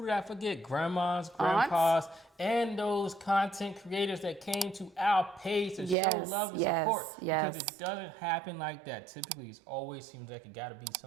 did I forget? Grandmas, grandpas, and those content creators that came to our page to show love and support. Because it doesn't happen like that. Typically, it always seems like it gotta be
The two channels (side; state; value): left; drops out; at 6.0 s